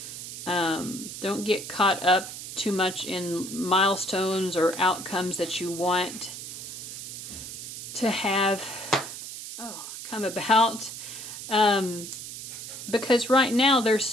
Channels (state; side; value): noise; right; hiss, 9 dB below the sound